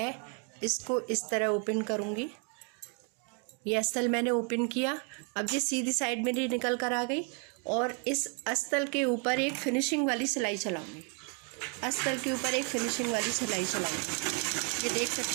इसको इस तरह ओपन करूंगी। ये अस्तर मैंने ओपन किया। अब ये सीधी साइड मेरी निकल कर आ गई और इस अस्तर के ऊपर एक फिनिशिंग वाली सिलाई चलाऊंगी। अस्तर के ऊपर एक फिनिशिंग वाली सिलाई चलाऊंगी। ये देख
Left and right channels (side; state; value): left; quieter; 35.4 dB